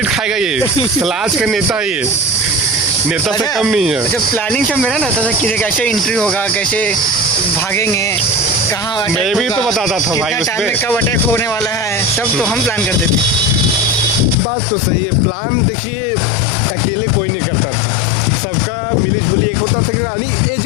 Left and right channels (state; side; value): drops out; right; at 14.4 s